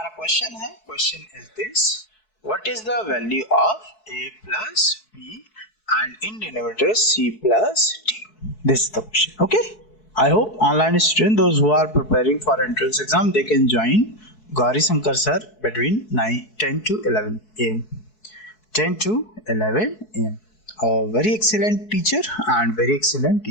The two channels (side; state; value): right; late; 4.6 ms